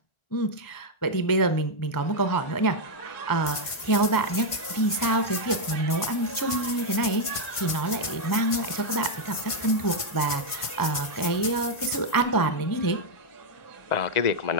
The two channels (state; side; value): late; right; 1.5 ms